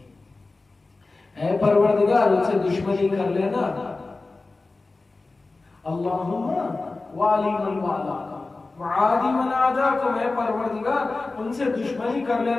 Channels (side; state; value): right; quieter; 3.5 dB